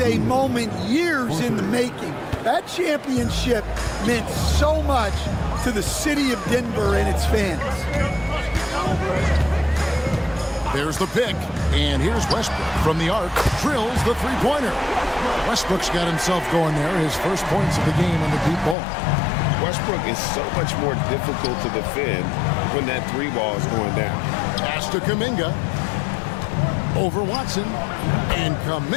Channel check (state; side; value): drops out; right; at 18.8 s